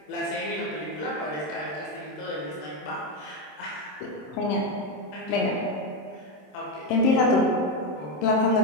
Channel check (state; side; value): late; right; 27 ms